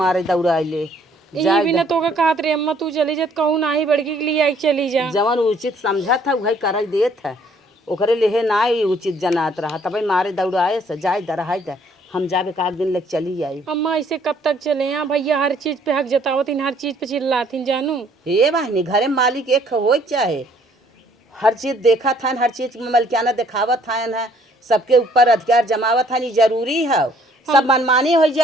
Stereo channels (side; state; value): both; normal; correlation 0.62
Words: दौड़ाइले यही भी ना तो का कहत रे अम्मा तू चली जत कहूं ना ही बड़की के लिए आई चली जा। जवन उचित समझा था वही कर देत है, ओकरे लेहे ना ही उचित जनात रहा तब मारे दौड़ाए से जाए दरहाई दे हम जाबे का दिन लग चली आई। अम्मा ऐसे कब तक चले यहाँ भैया हर चीज पे हक जतावतीन हर चीज पे चिल्लातीन जानू। हे बहनी घरे मालिक एक हो चाहे हर चीज देखा था हर चीज में मलकियाना दिखावत था है सबके ऊपर अधिकार जमावत था, नहीं जरूरी है सब मनमानी हो